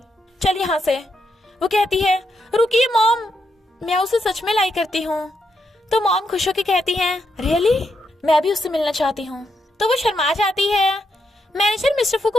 चल यहाँ से। वो कहती है रुकिए मॉम, मैं उसे सच में लाइक करती हूँ। तो मॉम खुश होकर कहती है रियली, मैं भी उससे मिलना चाहती हूँ। तो वो शर्मा जाती है। मैनेजर मिस्टर फू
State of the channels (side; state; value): both; normal; correlation 0.81